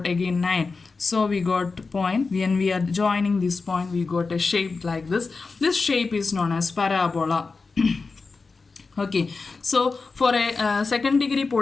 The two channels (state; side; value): quieter; right; 4.2 dB